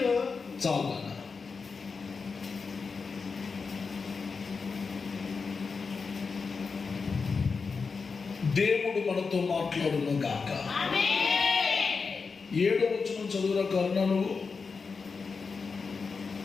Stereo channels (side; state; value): right; quieter; 4.9 dB